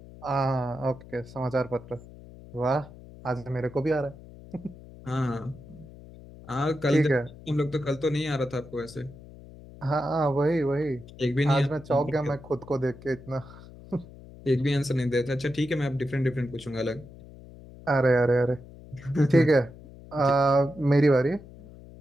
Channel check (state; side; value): noise; left; hum, 18 dB below the sound